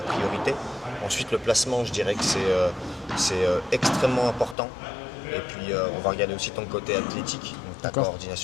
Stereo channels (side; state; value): right; drops out; at 4.5 s